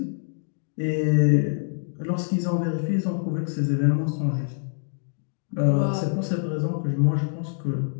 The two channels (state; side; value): silent; right; digital silence